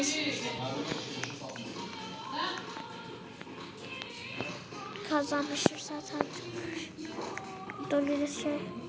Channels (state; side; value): identical; both; correlation 1.00